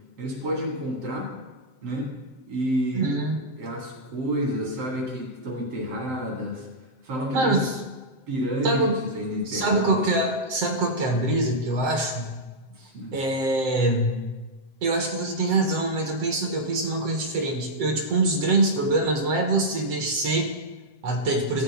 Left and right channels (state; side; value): late; left; 7.7 ms